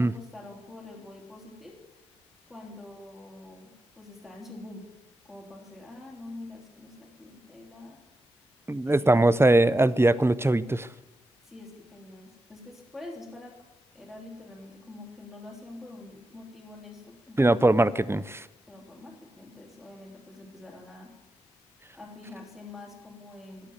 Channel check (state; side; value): normal; both; correlation 0.90